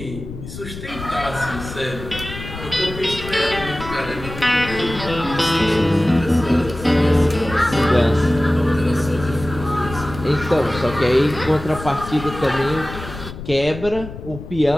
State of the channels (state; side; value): noise; left; rumble, 11 dB below the sound